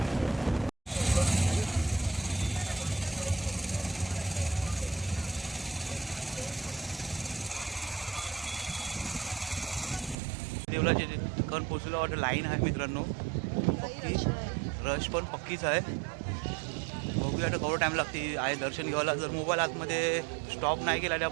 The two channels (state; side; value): drops out; left; at 10.2 s